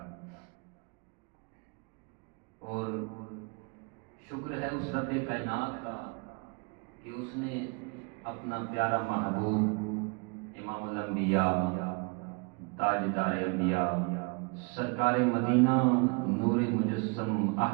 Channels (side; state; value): left; quieter; 32.8 dB